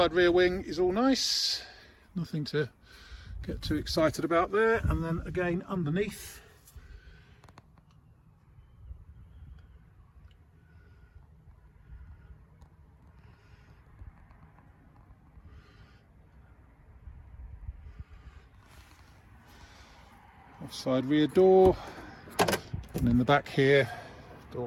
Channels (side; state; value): both; identical; correlation 1.00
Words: rear wing is all nice. Nothing to get too excited about there. And then again underneath, offside rear door, and in the back here,